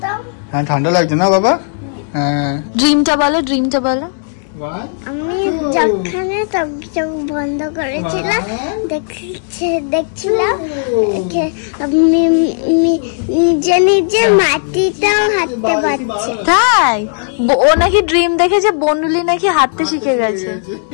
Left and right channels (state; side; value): silent; right; digital silence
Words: হ্যাঁ ঠান্ডা লাগছে না বাবা? হ্যাঁ ড্রিমটা বলো, ড্রিমটা বলো। আমি যখনে চোখ বন্ধ করেছিলাম দেখছিলাম নিজে নিজে মাটিটাও হাঁটতে পারছে। তাই? ও নাকি ড্রিম দেখেছে বনুলি নাকি হাঁটতে শিখে গেছে।